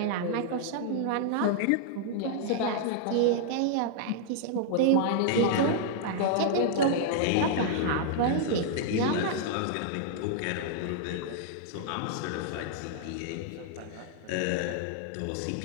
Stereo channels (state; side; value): different; both; correlation -0.01